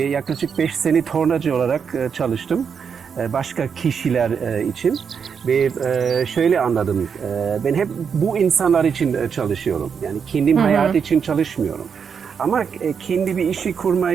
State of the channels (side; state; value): left; quieter; 6.6 dB